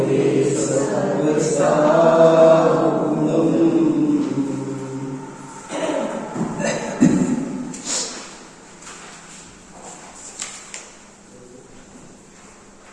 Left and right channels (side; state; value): both; identical; correlation 1.00